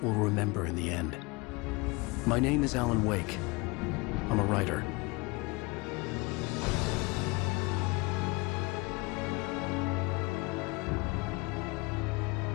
we'll remember in the end. My name is Alan Wake. I'm a writer.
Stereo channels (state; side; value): quieter; right; 25.6 dB